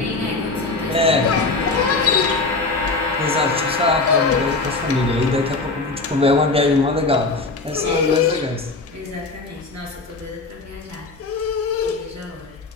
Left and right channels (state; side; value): quieter; right; 3.7 dB